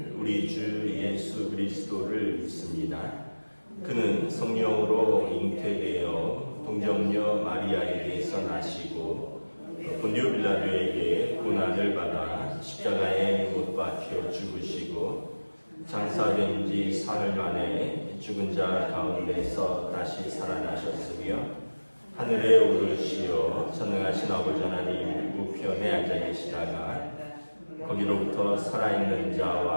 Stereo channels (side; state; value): both; inverted; correlation -1.00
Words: 우리 주 예수 그리스도를 믿습니다. 그는 성령으로 잉태되어 동정녀 마리아에게서 나시고 본디오 빌라도에게 고난을 받아 십자가에 못 박혀 죽으시고 장사된 지 사흘 만에 죽은 자 가운데서 다시 살아나셨으며 하늘에 오르시어 전능하신 아버지 하나님 우편에 앉아 계시다가 거기로부터 살아있는